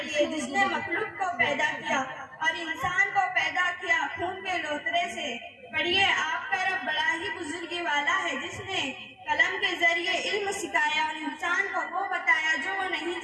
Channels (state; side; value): identical; both; correlation 1.00